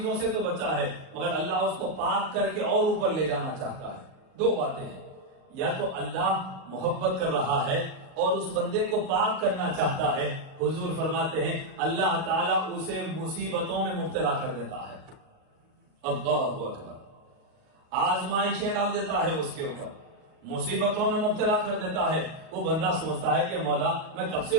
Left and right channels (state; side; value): late; left; 37 ms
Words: سے تو بچا ہے مگر اللہ اس کو پاک کر کے اور اوپر لے جانا چاہتا ہے. دو باتیں ہیں، یا تو اللہ محبت کر رہا ہے اور اس بندے کو پاک کرنا چاہتا ہے. حضور فرماتے ہیں اللہ تعالیٰ اسے مصیبتوں میں مبتلا کر دیتا ہے، اللہ اکبر، آزمائشیں ڈال دیتا ہے اس کے اوپر، مصیبتوں میں مبتلا کر دیتا ہے. وہ بندہ سوچتا ہے کہ مولا میں کب سے